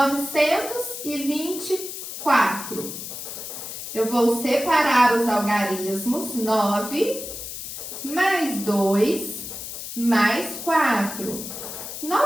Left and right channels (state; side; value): noise; left; hiss, 8 dB below the sound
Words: Eu vou separar os algarismos. 9 mais 2 mais 4.